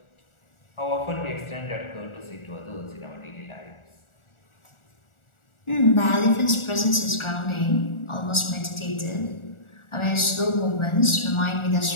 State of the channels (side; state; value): right; late; 1.4 ms